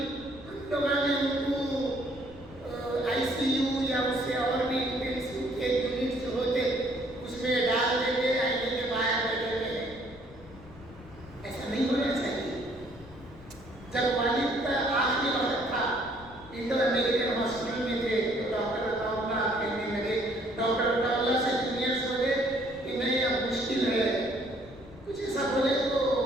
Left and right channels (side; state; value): left; noise; rumble, 19 dB below the sound